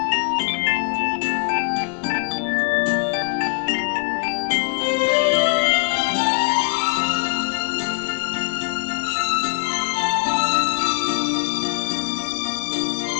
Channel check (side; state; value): right; quieter; 35.1 dB